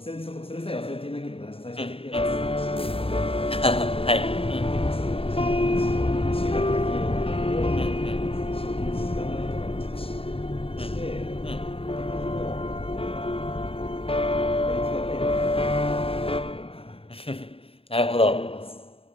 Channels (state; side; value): late; right; 0.27 ms